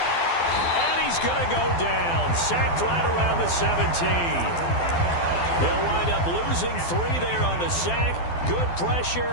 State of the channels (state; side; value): late; right; 12 ms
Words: And he's going to go down, sacked right around the 17. They'll wind up losing 3 there on the sack. Good